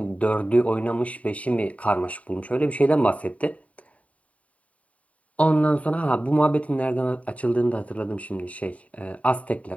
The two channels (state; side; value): late; right; 0.067 ms